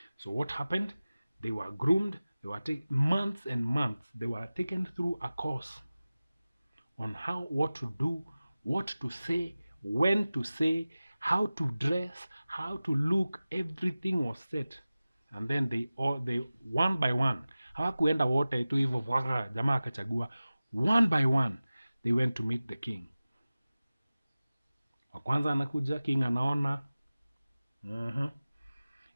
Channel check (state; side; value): inverted; both; correlation -0.96